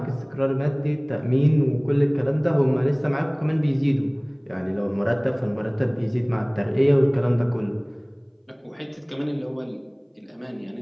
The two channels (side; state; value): both; identical; correlation 1.00